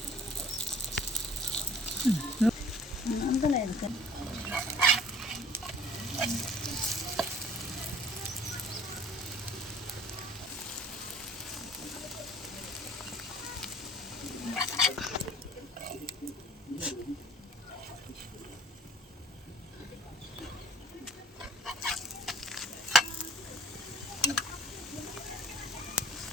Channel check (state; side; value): normal; both; correlation 0.50